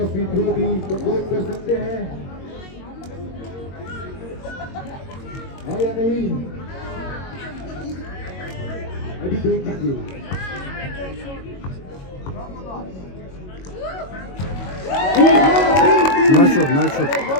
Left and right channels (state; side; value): late; right; 22 ms